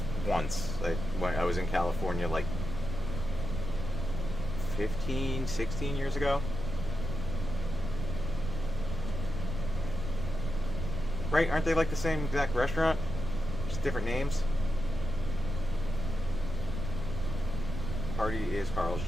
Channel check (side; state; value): right; noise; rumble, 5 dB below the sound